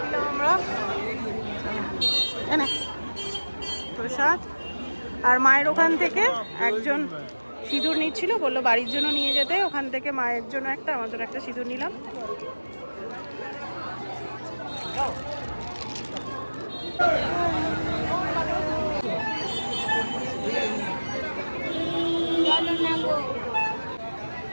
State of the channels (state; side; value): inverted; both; correlation -1.00